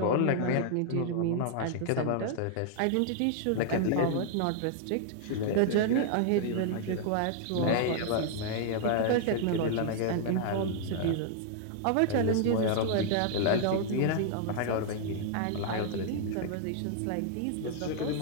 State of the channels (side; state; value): both; different; correlation -0.01